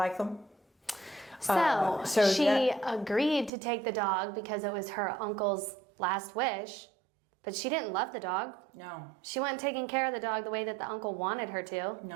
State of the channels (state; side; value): drops out; left; at 3.5 s